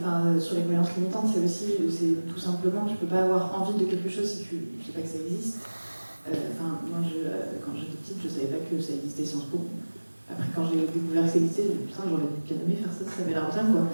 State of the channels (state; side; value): inverted; both; correlation -1.00